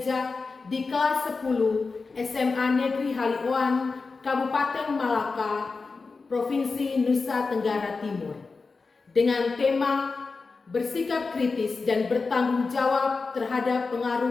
di kelas 10 SMA Negeri Halioan, Kabupaten Malaka, Provinsi Nusa Tenggara Timur, dengan tema bersikap kritis dan bertanggung jawab terhadap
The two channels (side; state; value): right; quieter; 4.3 dB